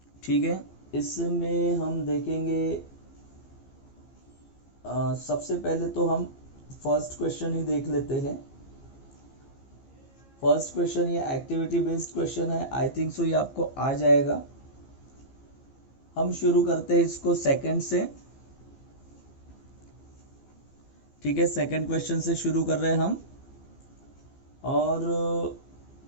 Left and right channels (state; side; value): late; right; 15 ms